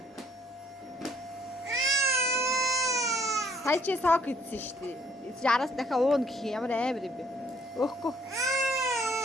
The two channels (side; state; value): both; normal; correlation 0.63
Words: Сая чи сок идсэн шүү дээ. Яраас дахиад уун гэх юм ямар амар юм бэ? Өөхгүй.